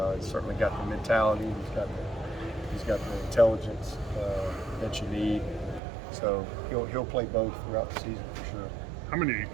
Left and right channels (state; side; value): drops out; left; at 5.8 s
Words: he's certainly got the mentality. He's got the intelligence that you need. So he'll play both throughout the season for sure. How many